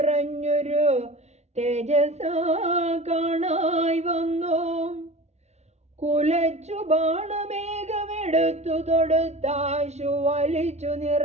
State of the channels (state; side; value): late; left; 0.32 ms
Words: തേജസാ കാണായി വന്നു. കുലച്ചു ബാണമേഘമെടുത്തു തൊടുത്താശു വലിച്ചു